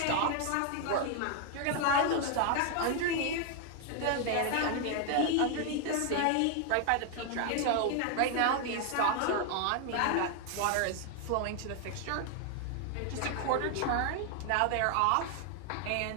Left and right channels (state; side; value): different; both; correlation 0.00